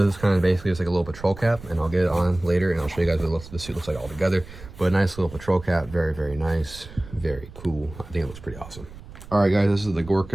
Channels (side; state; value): right; noise; rumble, 16 dB below the sound